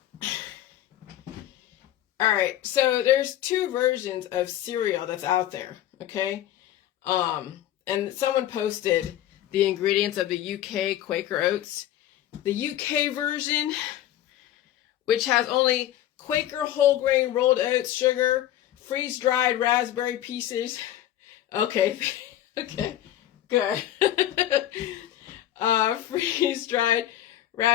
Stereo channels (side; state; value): right; quieter; 12.6 dB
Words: All right, so there's two versions of cereal that's out there, okay? And someone posted the ingredients of the UK Quaker Oats. The UK version, which has only Quaker whole grain rolled oats, sugar, freeze-dried raspberry pieces. Okay, okay, good. Freeze-dried